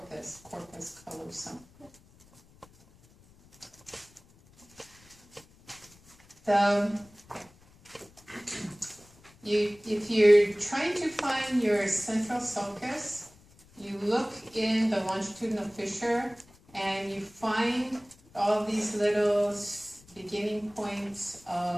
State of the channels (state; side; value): noise; left; rumble, 27 dB below the sound